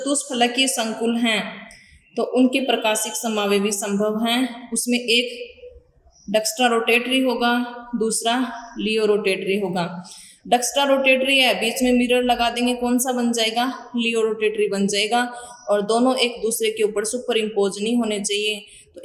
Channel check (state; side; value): identical; both; correlation 1.00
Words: संकुल हैं तो उनके प्रकाशिक समावयव भी संभव हैं। उसमें एक डक्स्ट्रा रोटेटरी होगा, दूसरा लियो रोटेटरी होगा। डक्स्ट्रा रोटेटरी है, बीच में मिरर लगा देंगे, कौन सा बन जाएगा, लियो रोटेटरी बन जाएगा। और दोनों एक दूसरे के ऊपर सुपर इम्पोज नहीं होने चाहिए, तो